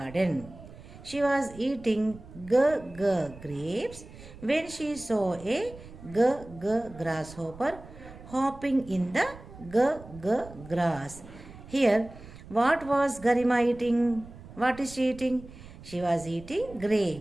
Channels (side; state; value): right; noise; rumble, 17 dB below the sound